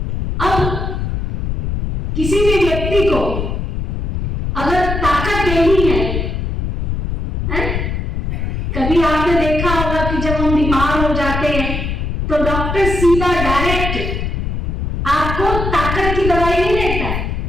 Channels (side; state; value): left; noise; rumble, 2 dB below the sound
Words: अब किसी भी व्यक्ति को अगर ताकत देनी है, कभी आपने देखा होगा कि जब हम बीमार हो जाते हैं तो डॉक्टर सीधा डायरेक्ट आपको ताकत की दवाई नहीं देता है।